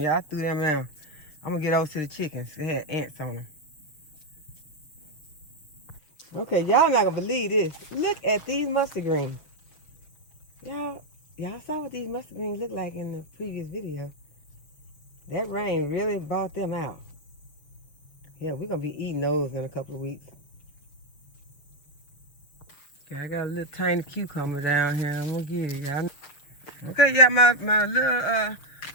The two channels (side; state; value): right; late; 6.6 ms